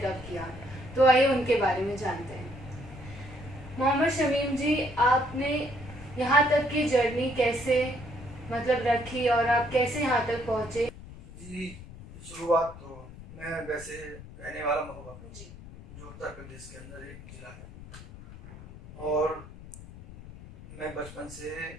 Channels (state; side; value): noise; left; rumble, 15 dB below the sound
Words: किया। तो आइए उनके बारे में जानते हैं। मोहम्मद शमीम जी, आपने यहाँ तक की जर्नी कैसे रखी और आप कैसे यहाँ तक पहुँचे? जी, शुरुआत तो मैं वैसे रहने वाला महोबा जो उत्तर प्रदेश के अंदर एक जिला है, और मैं बचपन से